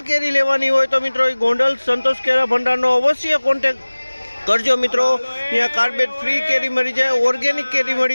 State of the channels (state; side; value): inverted; both; correlation -1.00